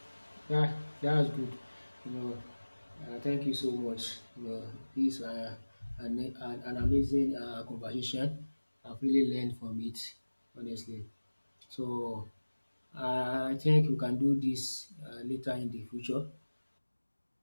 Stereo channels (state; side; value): inverted; both; correlation -1.00